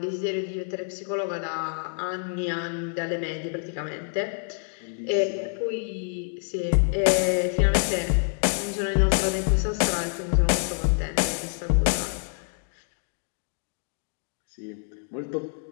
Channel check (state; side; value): silent; right; 60 dB below the other